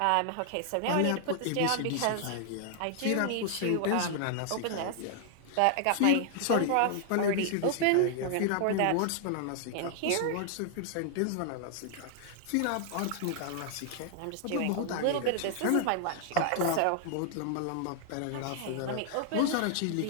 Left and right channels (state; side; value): different; both; correlation 0.00